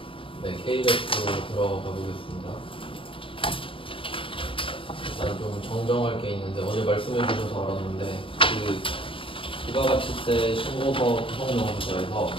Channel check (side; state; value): right; late; 0.25 ms